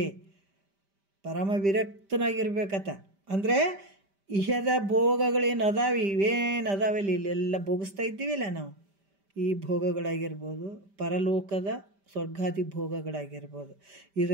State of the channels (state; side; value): late; left; 5.1 ms